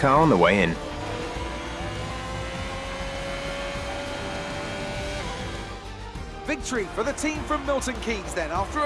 on the way in. Victory for the team from Milton Keynes then, after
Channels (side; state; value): both; identical; correlation 1.00